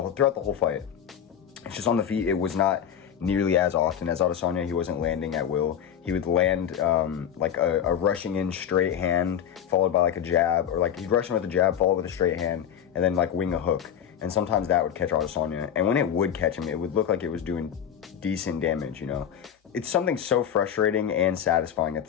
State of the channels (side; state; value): right; quieter; 9.1 dB